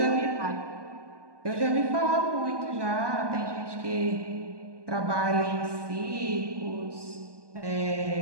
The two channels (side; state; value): left; late; 1.2 ms